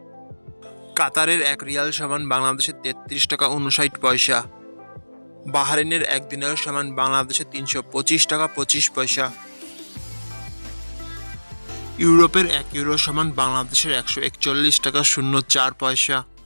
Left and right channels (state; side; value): inverted; both; correlation -1.00